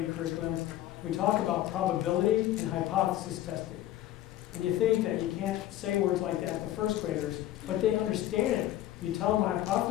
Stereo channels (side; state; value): right; quieter; 13.6 dB